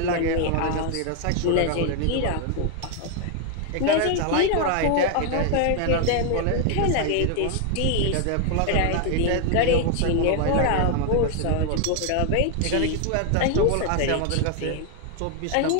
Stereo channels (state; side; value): different; both; correlation 0.00